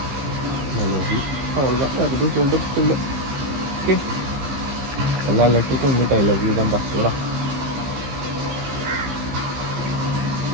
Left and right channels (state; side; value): late; left; 15 ms